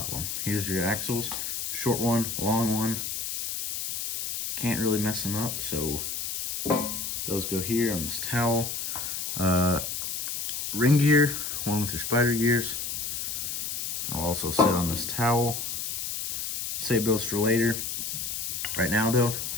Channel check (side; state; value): left; noise; hiss, 3 dB below the sound